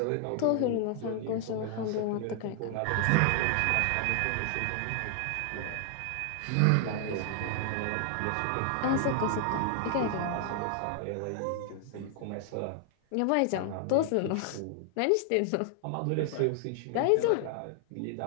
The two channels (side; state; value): both; different; correlation 0.00